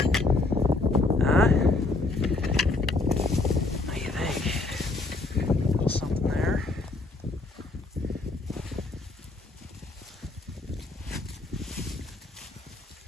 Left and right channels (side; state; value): right; quieter; 3.3 dB